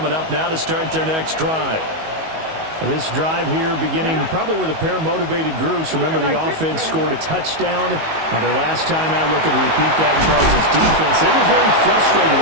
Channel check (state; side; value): late; left; 19 ms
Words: up now to start their next drive. This drive here beginning probably with a pair of motivated groups. Remember, the offense scored a touchdown on their last time out. Looking to repeat that in Chargers defense. They were very frustrated